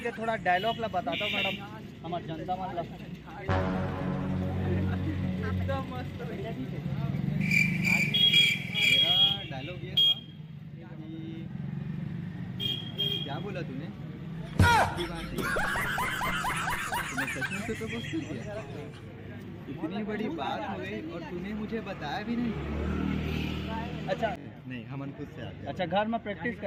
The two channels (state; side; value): identical; both; correlation 1.00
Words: थोड़ा डायलॉग ला बताता हूँ मैडम, हमारे जनता मतलब एकदम मस्त। मेरा डायलॉग ये था कि क्या बोला तूने तूने सच में तो प्रपोज कर दिया? इतनी बड़ी बात हो गई और तूने मुझे बताया भी नहीं। अच्छा नहीं हमन खुद से आ गए। अच्छा घर में प्रैक्टिस